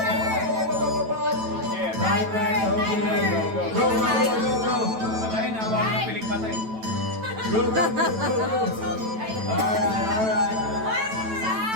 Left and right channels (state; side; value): late; left; 9.1 ms